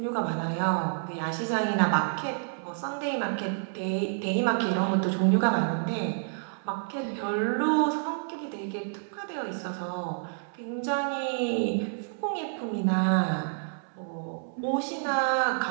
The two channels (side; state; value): left; silent; 59 dB below the other